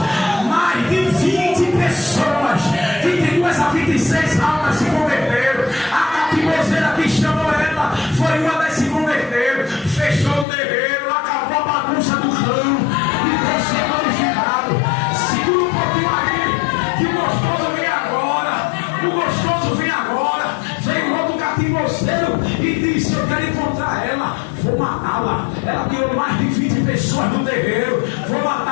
mais de 20 pessoas, 22 a 26 almas se converteram. A capimbozeira que chamou ela foi uma das que se converteram. Fechou o terreiro, acabou a bagunça do clã e Deus foi glorificado. Segura um pouquinho aí, que o gostoso vem agora. O gostoso vem agora. Veio outro capimbozeiro e disse: eu quero encontrar ela, vou matá-la. Ela tirou mais de 20 pessoas do terreiro. Vou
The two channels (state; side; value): drops out; right; at 10.5 s